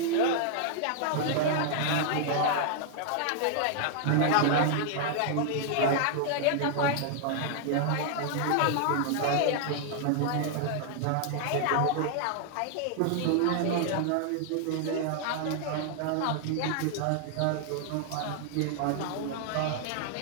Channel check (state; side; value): different; both; correlation 0.00